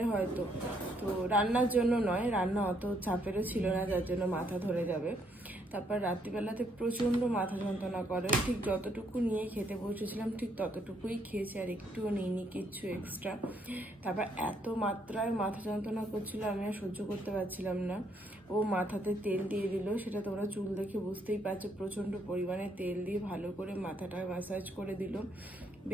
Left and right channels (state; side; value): normal; both; correlation 0.71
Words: হয়তো, তো রান্নার জন্য নয়, রান্না অত চাপেরও ছিল না যার জন্য মাথা ধরে যাবে। তারপর রাত্রিবেলাতে প্রচণ্ড মাথা যন্ত্রণা করে, ঠিক যতটুকু নিয়ে খেতে বসেছিলাম ঠিক ততটুকুই খেয়েছি, আর একটুও নিইনি কিচ্ছু এক্সট্রা। তারপর এত মাত্রায় মাথা যন্ত্রণা করছিল আমি আর সহ্য করতে পারছিলাম না। ও মাথাতে তেল দিয়ে দিল, সেটা তোমরা চুল দেখে বুঝতেই পারছো, প্রচণ্ড পরিমাণে তেল দিয়ে ভালো করে মাথাটা ম্যাসাজ করে দিল,